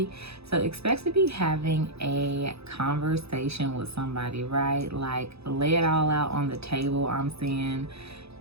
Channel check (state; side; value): late; left; 0.78 ms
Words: So expect to be having a conversation with somebody, right? Like lay it all out on the table, I'm seeing,